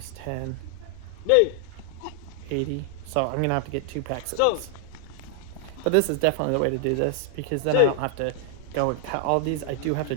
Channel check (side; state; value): both; different; correlation 0.00